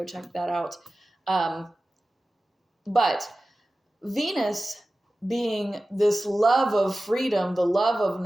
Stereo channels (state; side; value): normal; both; correlation 0.96